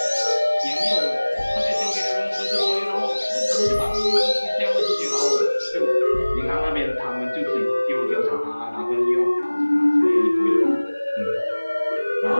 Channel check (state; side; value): inverted; both; correlation -1.00